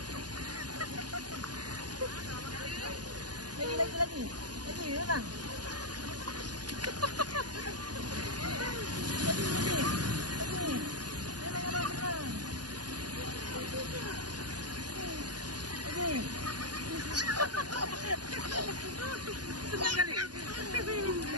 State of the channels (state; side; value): late; left; 0.69 ms